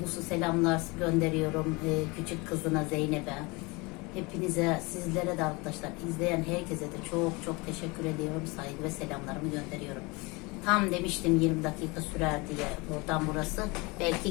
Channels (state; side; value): quieter; right; 26.2 dB